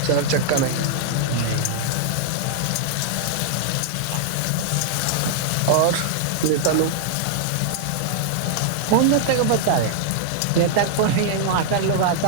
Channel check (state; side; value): different; both; correlation -0.01